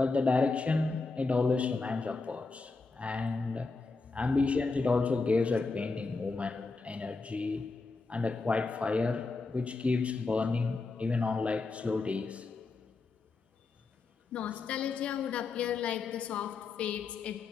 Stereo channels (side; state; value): right; quieter; 4.0 dB